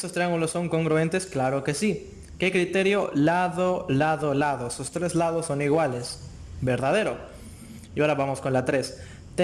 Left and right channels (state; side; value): identical; both; correlation 1.00